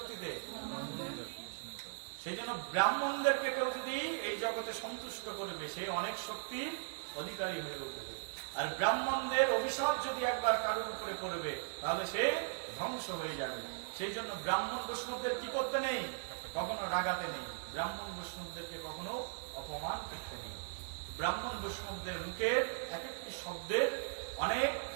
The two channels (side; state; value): left; silent; digital silence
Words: সেই জন্য ব্রাহ্মণদেরকে কেউ যদি এই জগতে সন্তুষ্ট করবে, সে অনেক শক্তির অধিকারী হয়ে উঠবে। আর ব্রাহ্মণদের অভিশাপ যদি একবার কারোর উপরে পড়বে, তাহলে সে ধ্বংস হয়ে যাবে। সেই জন্য ব্রাহ্মণ বৈষ্ণবদের কি করতে নেই? কখনো রাগাতে নেই। ব্রাহ্মণ বৈষ্ণবদেরকে কখনো অপমান করতে নেই। ব্রাহ্মণ বৈষ্ণবদের মুখের এক একটি শব্দের অনেক